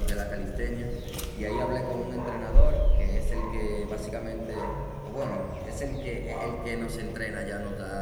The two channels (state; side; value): identical; both; correlation 1.00